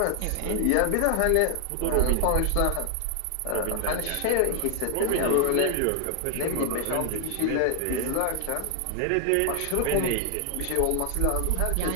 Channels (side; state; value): both; different; correlation 0.00